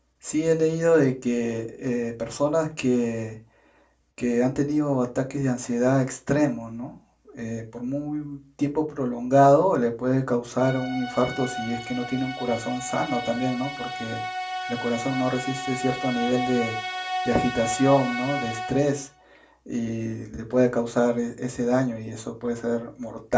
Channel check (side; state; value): both; identical; correlation 1.00